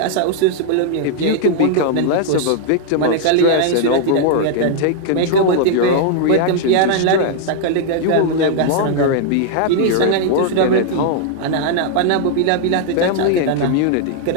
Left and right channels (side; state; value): both; different; correlation 0.00